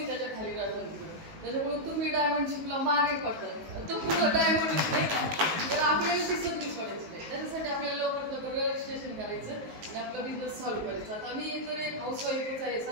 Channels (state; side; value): late; left; 19 ms